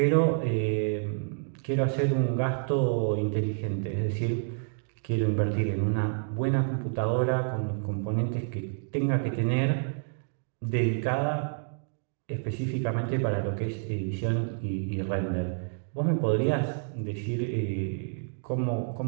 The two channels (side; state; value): left; silent; 59 dB below the other